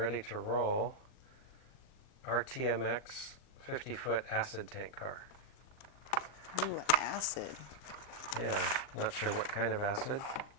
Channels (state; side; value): late; right; 40 ms